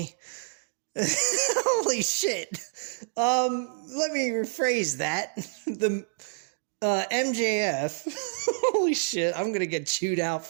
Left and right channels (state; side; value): silent; left; digital silence